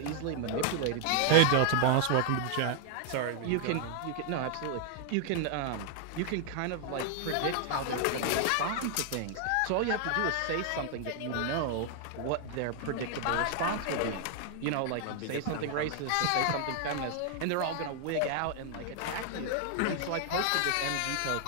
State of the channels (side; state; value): both; different; correlation 0.00